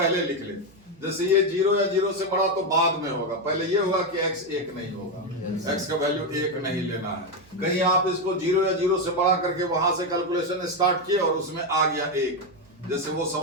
लिख ले। जैसे ये जीरो या जीरो से बड़ा तो बाद में होगा, पहले ये होगा कि x एक नहीं होगा, x का वैल्यू एक नहीं लेना है। कहीं आप इसको जीरो या जीरो से बड़ा करके वहां से कैलकुलेशन स्टार्ट किए और उसमें आ गया एक, जैसे वो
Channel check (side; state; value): right; noise; hum, 28 dB below the sound